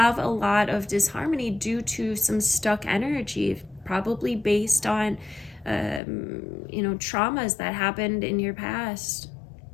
a lot of disharmony due to some stuck energy, probably based on, you know, traumas that happened in your past,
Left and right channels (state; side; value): drops out; right; at 6.0 s